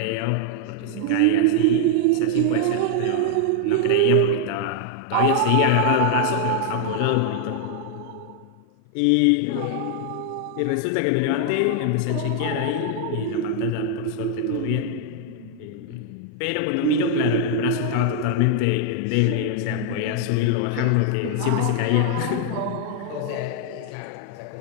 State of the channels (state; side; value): different; both; correlation 0.00